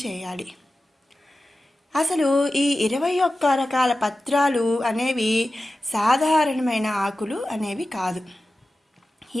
చేయాలి. అసలు ఈ 21 రకాల పత్రాలు అనేవి సాధారణమైన ఆకులు అనేవి కాదు.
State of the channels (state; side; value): normal; both; correlation 0.94